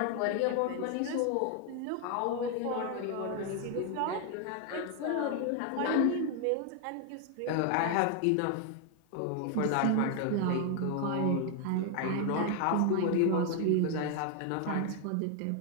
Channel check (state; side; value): different; both; correlation 0.00